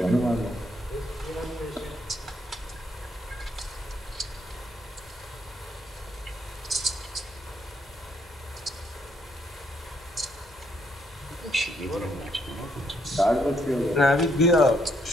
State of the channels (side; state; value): both; normal; correlation 0.72